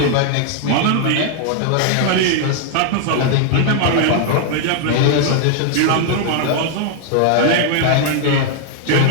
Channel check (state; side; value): different; both; correlation 0.00